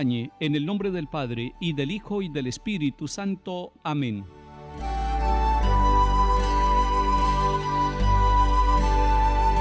en el nombre del Padre, y del Hijo, y del Espíritu Santo. Amén.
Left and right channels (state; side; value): identical; both; correlation 1.00